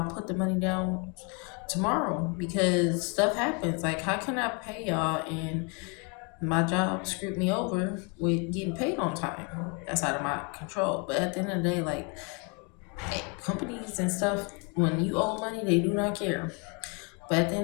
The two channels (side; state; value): right; quieter; 33.1 dB